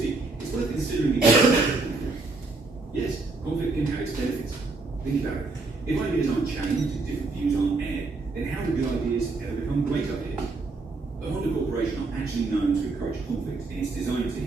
it's worth considering the benefits of conflict. Yes, conflict can have its benefits. Think about it. If ideas aren't challenged and different views aren't aired, then how do good ideas ever become great ideas? The Honda Corporation are actually known to encourage conflict in its design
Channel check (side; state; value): left; quieter; 3.6 dB